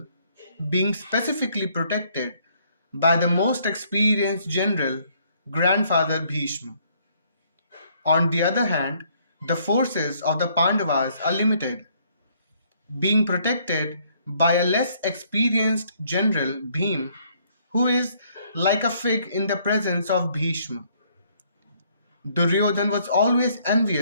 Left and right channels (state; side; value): inverted; both; correlation -0.66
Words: being specifically protected by the most experienced general, grandfather Bhishma. On the other hand, the forces of the Pandavas are limited, being protected by a less experienced general, Bhim, who is like a fig in the presence of Bhishma. Duryodhan was always